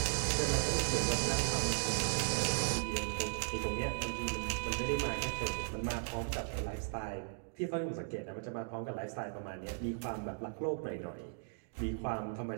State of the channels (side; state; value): left; silent; digital silence